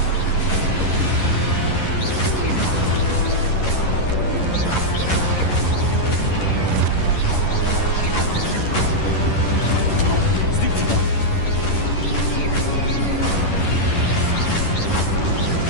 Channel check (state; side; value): late; right; 11 ms